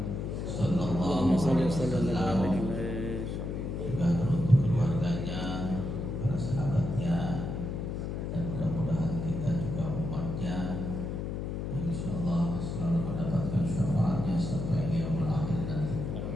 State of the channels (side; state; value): left; noise; hum, 3 dB below the sound